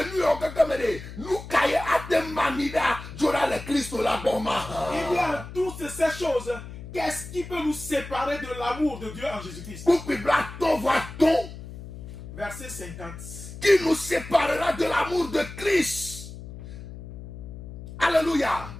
nu o gagamede, nu kaye ate manida, jora le Kristo la boma. Il y a toutes ces choses. Qu'est-ce qui peut nous séparer de l'amour de Dieu en Jésus-Christ? Pour que ton voit-on, Verset 50. qui nous séparera de l'amour de Christ. Alléluia.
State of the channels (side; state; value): left; noise; hum, 12 dB below the sound